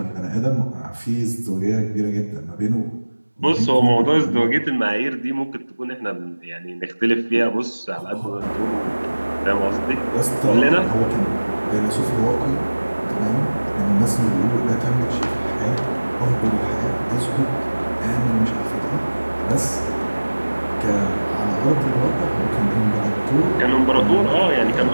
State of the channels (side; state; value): both; inverted; correlation -1.00